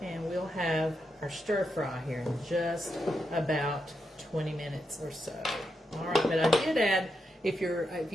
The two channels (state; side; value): normal; both; correlation 0.84